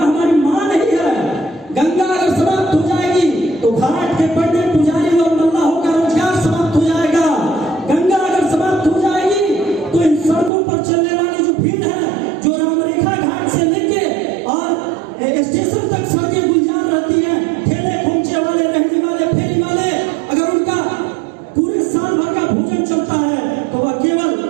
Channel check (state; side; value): drops out; left; at 10.5 s